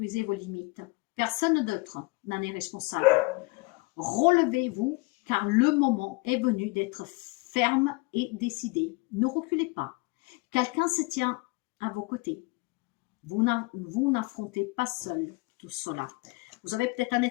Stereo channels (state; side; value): quieter; right; 25.4 dB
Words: vos limites. Personne d'autre n'en est responsable. Relevez-vous car le moment est venu d'être ferme et décidé. Ne reculez pas. Quelqu'un se tient à vos côtés. Vous n'affrontez pas seul tout cela. Vous avez peut-être un